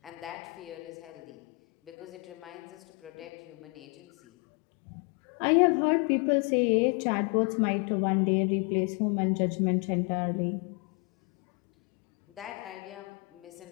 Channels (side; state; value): right; quieter; 29.9 dB